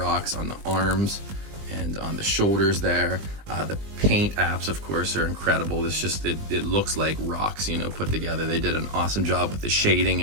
on the arms and on the shoulders there. The paint apps, of course, are incredible. It's just, it looks like rocks, put together. They did an awesome job with the shading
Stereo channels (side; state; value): left; late; 20 ms